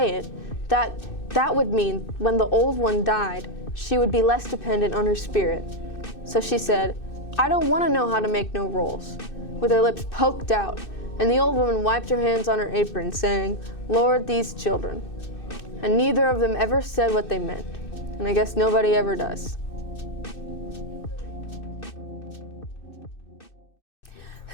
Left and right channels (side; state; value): right; late; 2.6 ms